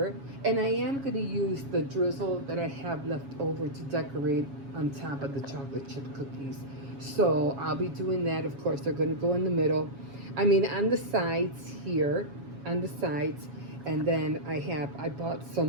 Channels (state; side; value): late; left; 7.2 ms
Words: and I am going to use the drizzle that I have left over to decorate on top of the chocolate chip cookies. So I'll be doing that. Of course, they're going to go in the middle. I mean, on the sides here, on the sides, and then I bought